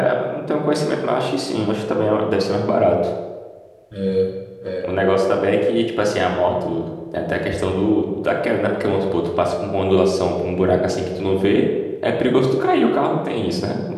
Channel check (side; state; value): both; identical; correlation 1.00